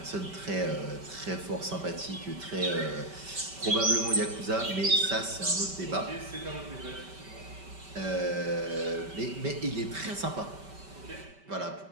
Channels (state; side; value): late; left; 5.2 ms